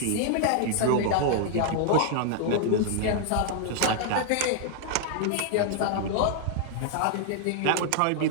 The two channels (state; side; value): different; both; correlation 0.00